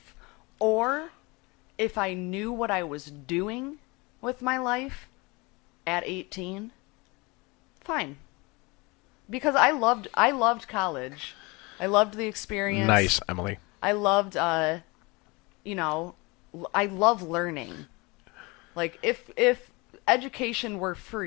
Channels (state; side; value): quieter; right; 25.8 dB